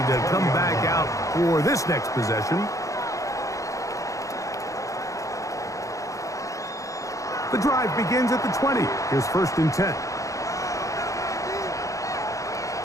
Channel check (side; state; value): right; late; 0.16 ms